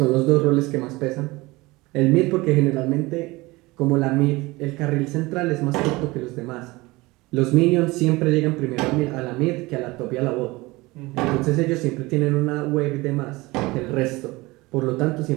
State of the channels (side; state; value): left; quieter; 21.9 dB